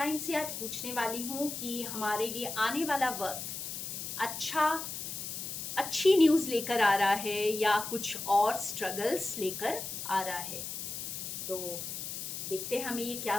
से आज पूछने वाली हूँ कि हमारे लिए आने वाला वक्त अच्छी न्यूज़ लेकर आ रहा है या कुछ और स्ट्रगल्स लेकर आ रहा है। तो देखते हैं हमें ये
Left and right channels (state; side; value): noise; left; hiss, 6 dB below the sound